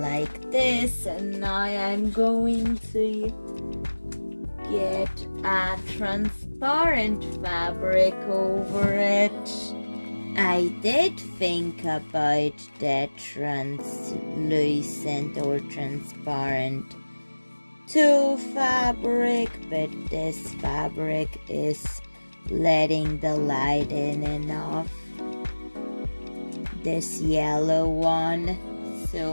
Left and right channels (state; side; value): inverted; both; correlation -1.00